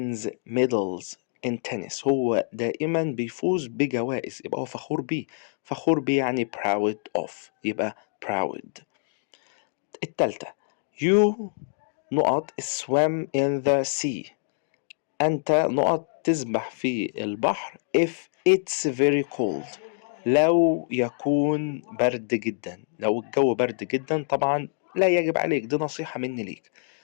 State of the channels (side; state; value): right; silent; digital silence